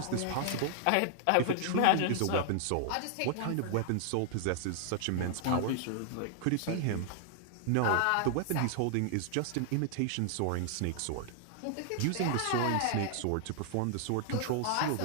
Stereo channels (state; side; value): different; both; correlation -0.01